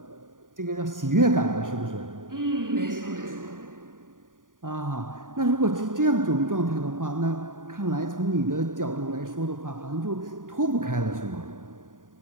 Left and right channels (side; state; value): left; late; 0.89 ms